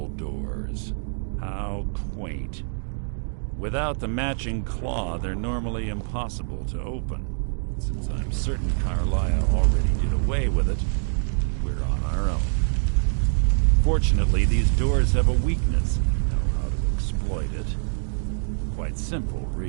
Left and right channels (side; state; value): left; silent; digital silence